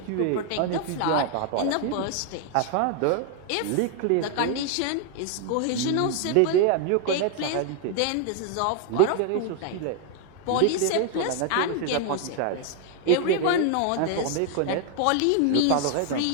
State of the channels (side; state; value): both; different; correlation 0.00